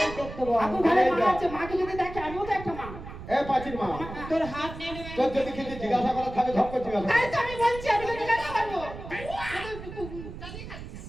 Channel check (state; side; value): noise; right; rumble, 12 dB below the sound